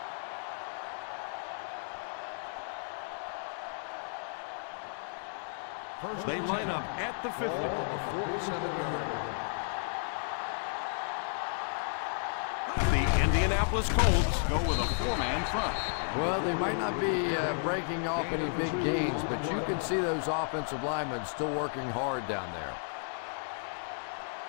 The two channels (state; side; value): silent; right; digital silence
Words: They line up at the 50. The Indianapolis Colts go with a 4-man front. Well, they might not be breaking off any big gains, but you can see those offensive linemen still working hard down there.